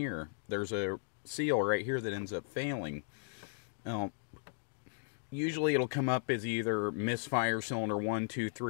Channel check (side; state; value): right; silent; digital silence